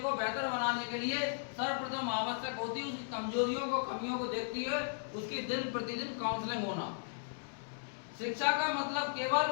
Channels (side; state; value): right; silent; digital silence